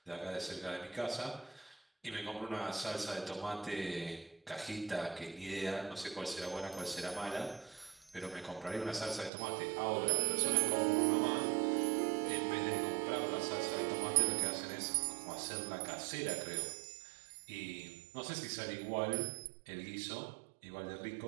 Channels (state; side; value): drops out; left; at 9.3 s